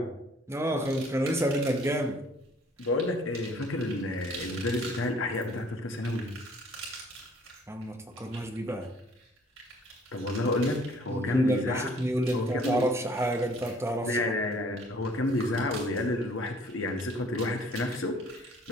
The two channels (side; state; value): both; normal; correlation 0.57